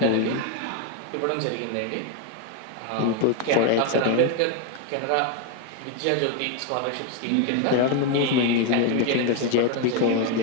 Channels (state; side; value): different; both; correlation 0.02